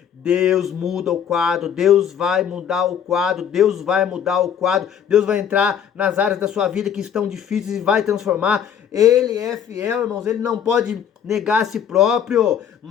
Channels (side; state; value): right; quieter; 8.5 dB